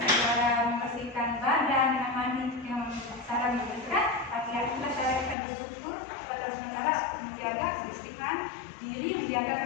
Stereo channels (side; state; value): right; drops out; at 5.4 s